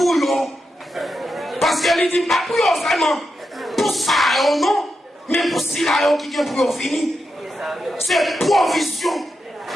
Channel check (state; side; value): normal; both; correlation 0.87